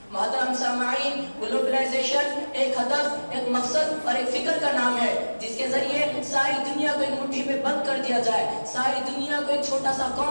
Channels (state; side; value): inverted; both; correlation -1.00